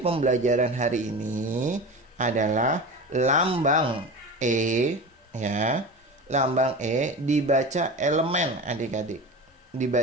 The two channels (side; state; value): both; normal; correlation 0.30